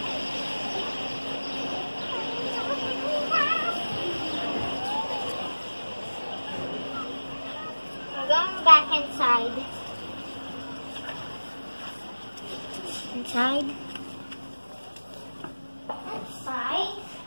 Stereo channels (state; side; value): inverted; both; correlation -1.00